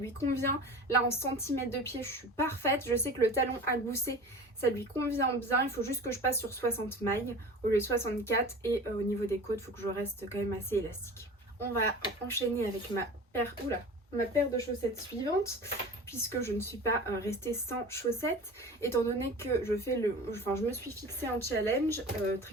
convient. Là en centimètres de pied je suis parfaite. Je sais que le talon à gousset ça lui convient bien. Il faut juste que je passe sur 60 mailles au lieu de 64. Et au niveau des côtes il faut que je reste quand même assez élastique. On va enchaîner avec ma paire, ma paire de chaussettes suivante, puisque je ne suis pas restée sans chaussettes, étant donné que je me suis fixé un challenge,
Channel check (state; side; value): normal; both; correlation 0.37